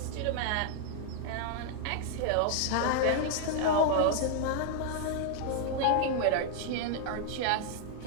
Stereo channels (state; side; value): different; both; correlation 0.00